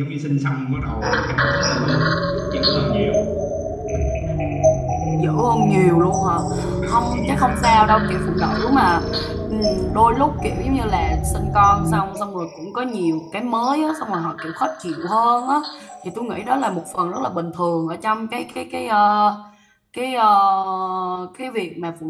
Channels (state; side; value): identical; both; correlation 1.00